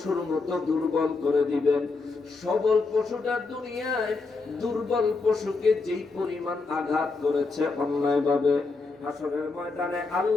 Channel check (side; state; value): right; quieter; 3.9 dB